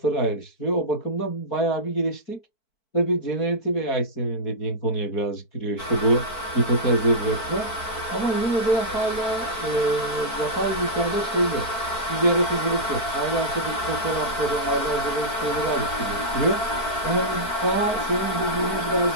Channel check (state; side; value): late; right; 4.5 ms